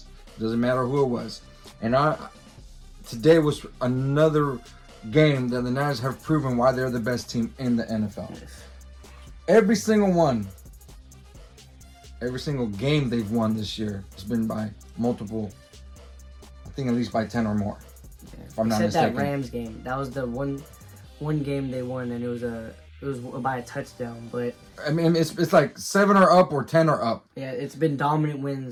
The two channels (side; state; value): both; identical; correlation 1.00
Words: Doesn't matter who it was. And today was another game that the Niners have proven why they're the best team in the NFL. Yes. Every single one, every single game they've won this year has been by multiple, I think at least by 10 or more. Yeah. If I'm not mistaken. That Rams game. That was the one game they won, and it was by a touchdown. But I mean, it's like 7 or up or 10 or up. yeah, it's been dominant